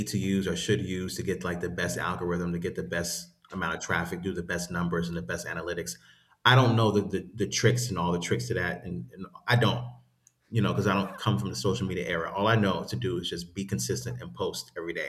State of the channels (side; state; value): both; identical; correlation 1.00